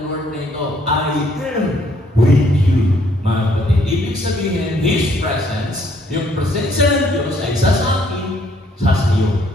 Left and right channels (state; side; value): normal; both; correlation 0.66